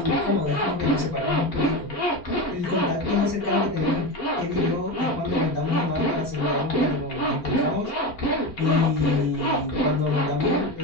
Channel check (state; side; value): late; right; 4.4 ms